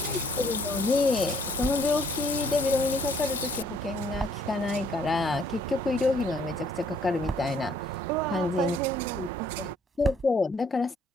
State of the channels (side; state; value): both; normal; correlation 0.64